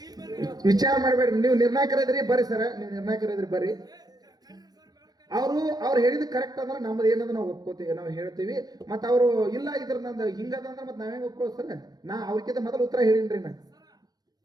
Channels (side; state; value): left; late; 0.19 ms